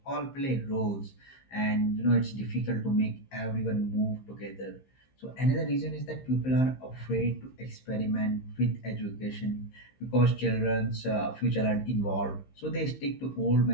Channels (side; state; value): right; late; 15 ms